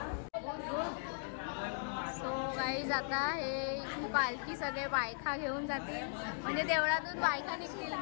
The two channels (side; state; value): right; silent; digital silence